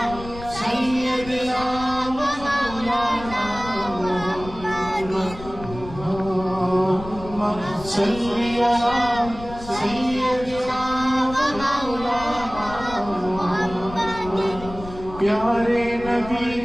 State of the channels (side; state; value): left; noise; rumble, 14 dB below the sound